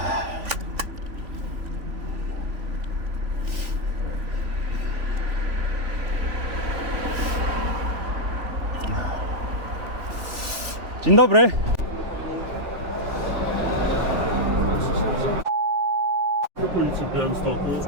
Dzień dobry. Policji w Białymstoku.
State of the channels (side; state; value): left; late; 3.4 ms